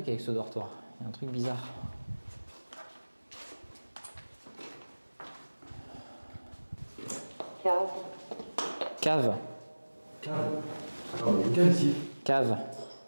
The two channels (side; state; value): both; inverted; correlation -1.00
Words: avec ce dortoir. Il y a un truc bizarre. Cave. Cave. Alors, il y a quelqu'un ici. Cave.